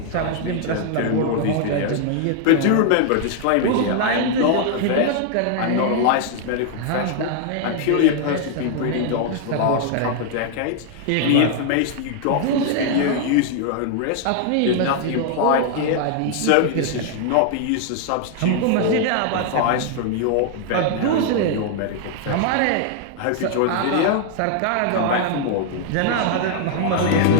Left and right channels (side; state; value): both; different; correlation 0.00